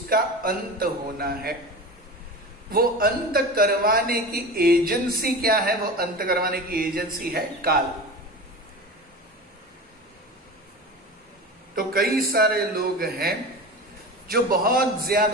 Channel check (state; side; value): normal; both; correlation 0.30